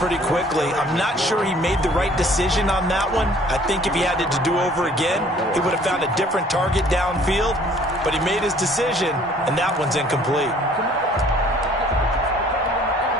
quickly. I'm not sure he made the right decision on that one. I think if he had it to do over again, he would have found a different target downfield. But he made his decision, and that one's incomplete.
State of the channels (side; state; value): both; normal; correlation 0.56